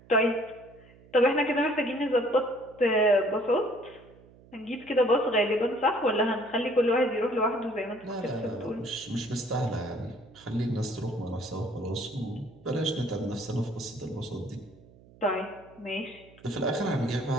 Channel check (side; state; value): right; noise; hum, 25 dB below the sound